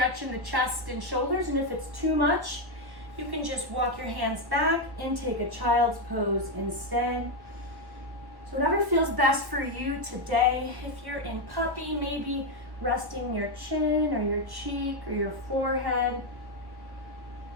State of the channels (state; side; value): late; left; 1.1 ms